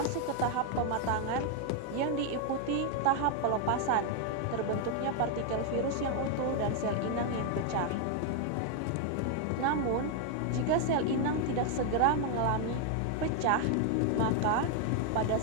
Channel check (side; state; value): both; different; correlation 0.00